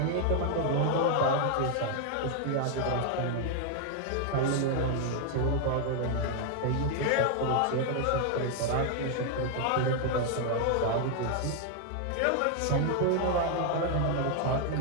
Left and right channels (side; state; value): both; different; correlation 0.00